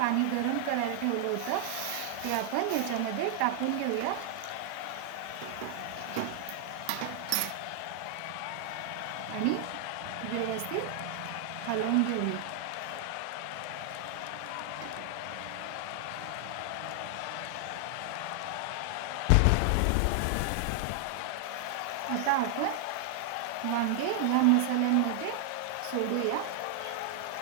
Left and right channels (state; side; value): different; both; correlation 0.00